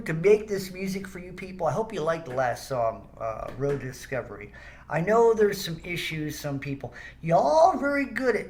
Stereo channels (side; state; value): both; identical; correlation 1.00